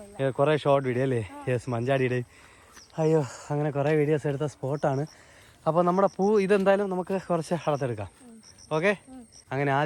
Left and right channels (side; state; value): both; identical; correlation 1.00